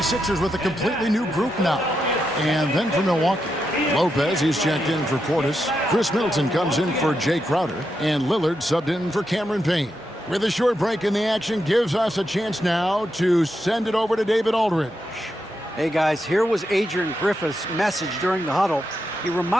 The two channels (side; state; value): both; normal; correlation 0.84